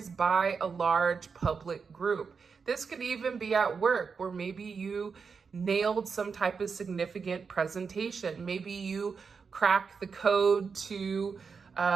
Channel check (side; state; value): left; quieter; 5.5 dB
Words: by a large public group. This could even be at work, where maybe you nailed some type of significant presentation. Maybe you cracked the code to